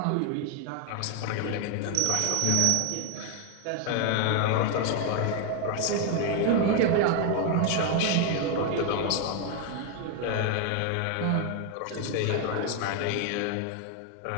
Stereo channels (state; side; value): different; both; correlation 0.01